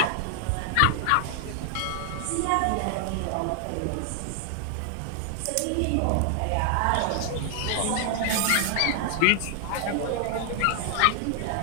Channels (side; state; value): both; different; correlation 0.00